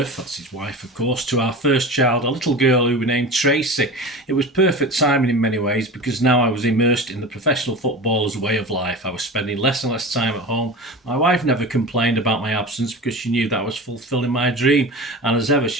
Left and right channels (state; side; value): normal; both; correlation 0.31